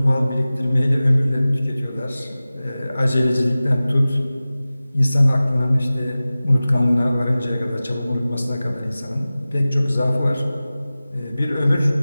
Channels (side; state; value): both; inverted; correlation -0.97